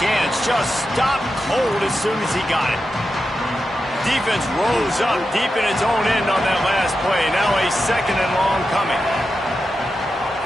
just stopped cold as soon as he got it. Defense rose up deep in its own end on that last play. Now a 2nd and long coming.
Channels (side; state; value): both; normal; correlation 0.89